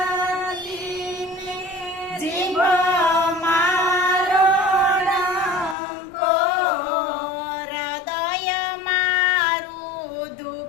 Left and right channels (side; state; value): right; drops out; at 5.8 s